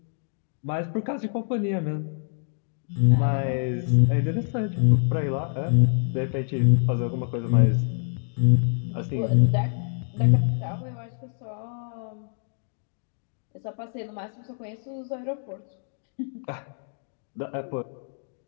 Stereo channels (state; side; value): silent; right; digital silence